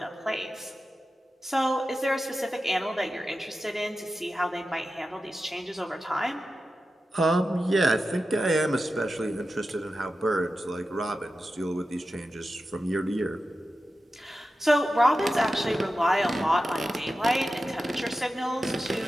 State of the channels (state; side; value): normal; both; correlation 0.92